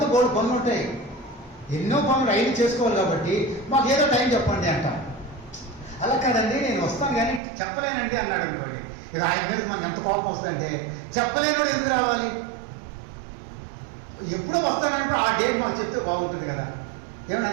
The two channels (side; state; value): left; drops out; at 7.4 s